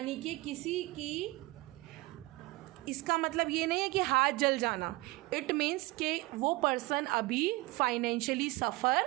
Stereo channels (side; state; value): left; quieter; 21.3 dB